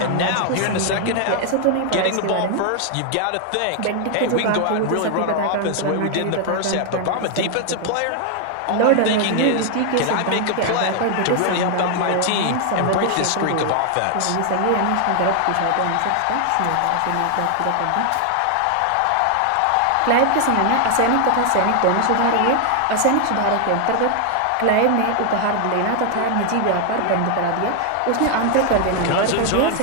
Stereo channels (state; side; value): different; both; correlation 0.00